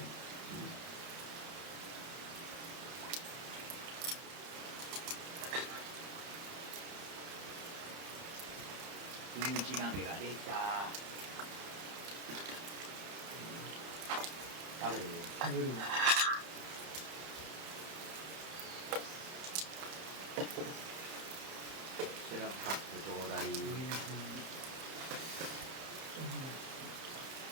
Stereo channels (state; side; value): late; left; 30 ms